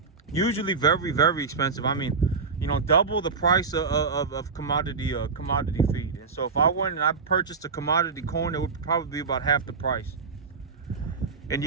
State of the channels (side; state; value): left; quieter; 4.9 dB